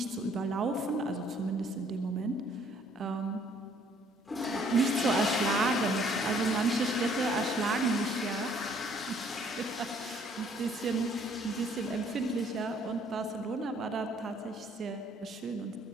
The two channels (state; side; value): normal; both; correlation 0.62